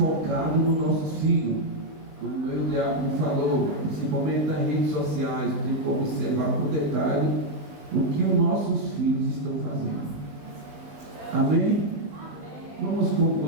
nos nossos filhos. Como o diácono falou, principalmente nas redes sociais, tem que observar com detalhe o que os nossos filhos estão fazendo. Amém? Vamos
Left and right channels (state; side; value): late; left; 19 ms